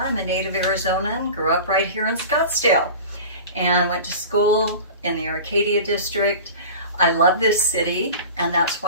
I'm a native Arizonan, grew up right here in Scottsdale, and went to school in the Arcadia district. I love this city, and that's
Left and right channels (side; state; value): both; inverted; correlation -0.36